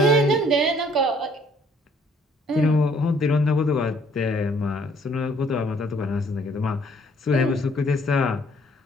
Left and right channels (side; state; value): both; normal; correlation 0.62